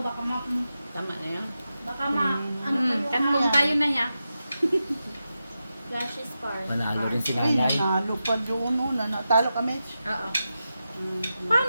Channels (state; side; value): inverted; both; correlation -0.90